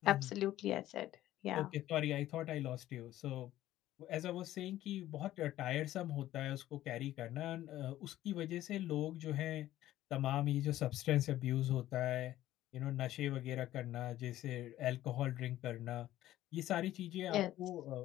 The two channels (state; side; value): quieter; right; 14.1 dB